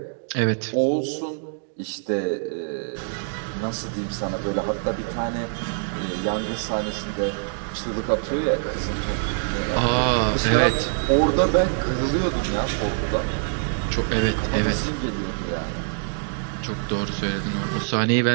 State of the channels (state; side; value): silent; left; digital silence